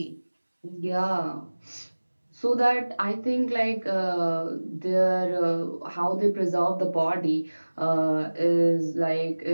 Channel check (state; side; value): inverted; both; correlation -1.00